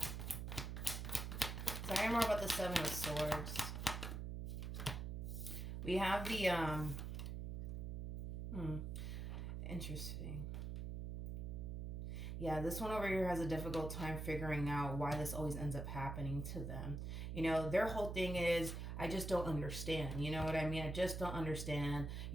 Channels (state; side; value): noise; right; hum, 4 dB below the sound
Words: Sorry more about the 7 of Swords. We have the, interesting. Yeah, this one over here has a difficult time figuring out why this always ends up happening to them. Their whole thing is, I just don't understand. You know what I mean? I just don't understand.